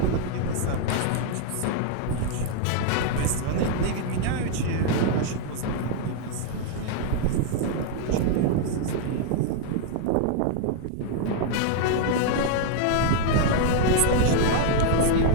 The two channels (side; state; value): both; different; correlation 0.00